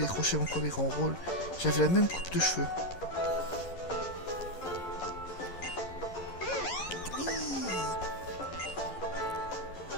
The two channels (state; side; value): late; right; 11 ms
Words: décroché mon premier grand rôle. J'avais la même coupe de cheveux.